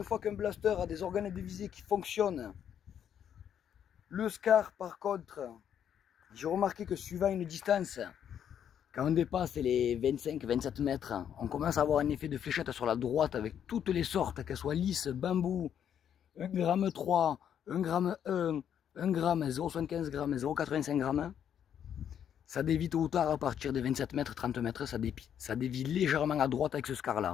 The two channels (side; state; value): right; quieter; 9.1 dB